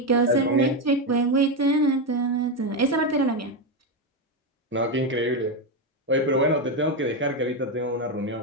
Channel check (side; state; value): both; normal; correlation 0.09